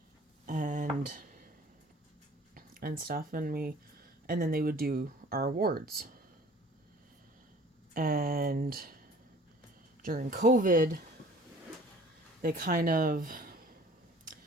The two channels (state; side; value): normal; both; correlation 0.50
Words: And stuff. And then they would do our awards. And during COVID, they kind of